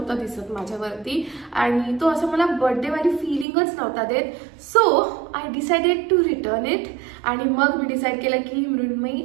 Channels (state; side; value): drops out; left; at 3.5 s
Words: दिसत माझ्यावरती, आणि तो असं मला बर्थडेवाली फिलिंगच नव्हता देत। So I decided to return it, आणि मग मी डिसाईड केलं की मृण्मयी